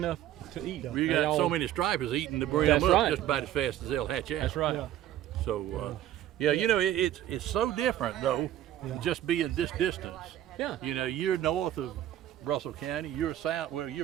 to eat. You got so many stripers eating the brim That's up right. just about as fast as they'll hatch out. That's right. Yeah. So, yeah, you know, it's so different though, just being this distance. Yeah. You know, you're north of Russell County, you're south, well,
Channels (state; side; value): quieter; left; 12.3 dB